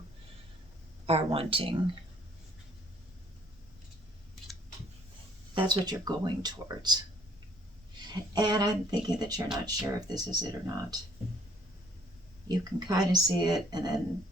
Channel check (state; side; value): normal; both; correlation 0.62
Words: are wanting. That's what you're going towards. And I'm thinking that you're not sure if this is it or not. You can kind of see it, and then